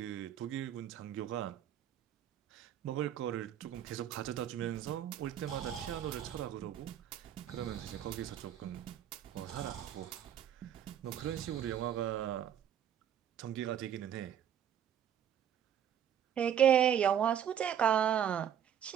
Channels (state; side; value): quieter; left; 9.6 dB